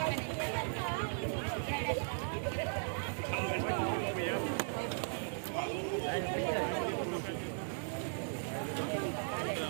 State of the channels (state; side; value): silent; left; digital silence